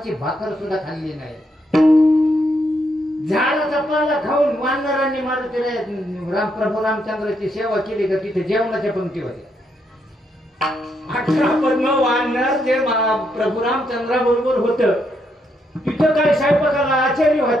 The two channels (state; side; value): normal; both; correlation 0.78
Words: भाकर सुद्धा खाल्ली नाही. झाडाचा पाला खाऊन वानरांनी मारुतीराया प्रभू रामचंद्राची सेवा केली का तिथे जेवणाच्या पंक्ती होत्या. 18 पद्म वानर जे प्रभू रामचंद्रा बरोबर होत तिथं काय स्वयंपाकाला आचार्य